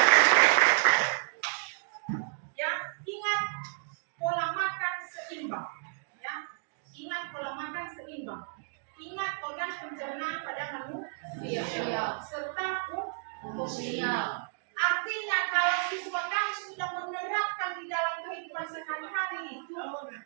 Ya, ingat pola makan seimbang. Ya, ingat pola makan seimbang. Ingat organ pencernaan pada manusia serta fungsinya. Artinya kalau siswa kami sudah menerapkan di dalam kehidupan sehari-hari itu,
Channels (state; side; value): silent; left; digital silence